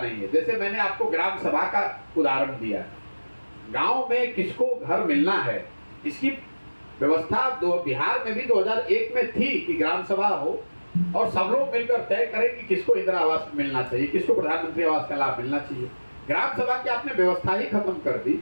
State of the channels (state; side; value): inverted; both; correlation -1.00